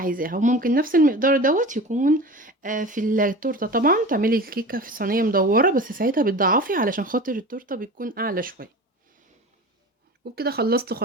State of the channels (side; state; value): both; normal; correlation 0.34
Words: وممكن نفس المقدار دوت يكون في التورتة. طبعا تعملي الكيكة في صينية مدورة، بس ساعتها بتضعفي علشان خاطر التورتة بتكون اعلى شوية. وبكده خلصت